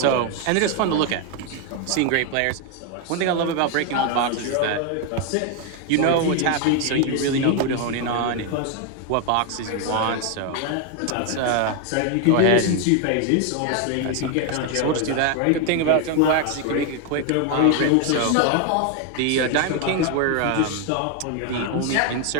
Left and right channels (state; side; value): different; both; correlation 0.01